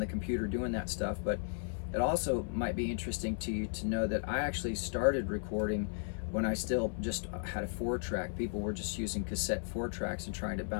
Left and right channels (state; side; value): silent; right; 54 dB below the other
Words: computer doing that stuff, but it also might be interesting to you to know that I actually started recording when I still just had a 4-track. People were just using cassette 4-tracks and trying to